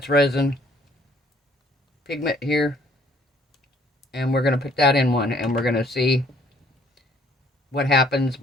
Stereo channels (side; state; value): both; normal; correlation 0.61